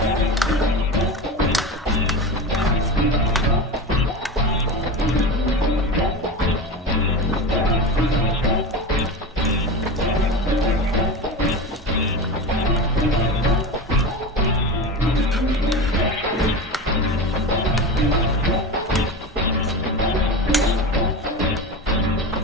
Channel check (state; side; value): normal; both; correlation 0.25